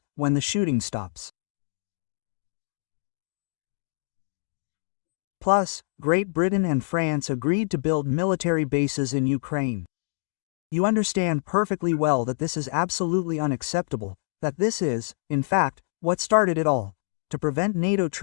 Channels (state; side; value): silent; right; digital silence